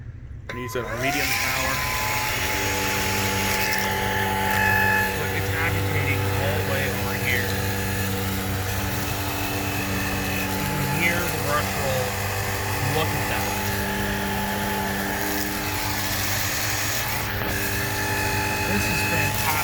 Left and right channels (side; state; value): both; identical; correlation 1.00